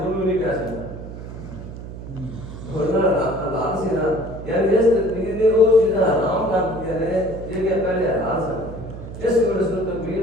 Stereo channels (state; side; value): noise; right; hum, 11 dB below the sound